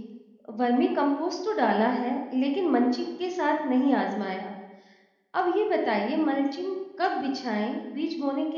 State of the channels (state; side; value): identical; both; correlation 1.00